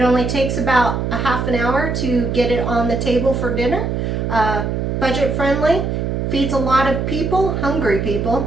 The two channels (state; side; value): noise; right; hum, 1 dB below the sound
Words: only takes about a half an hour to get it on the table for dinner. Budget friendly, feeds a lot of people, hungry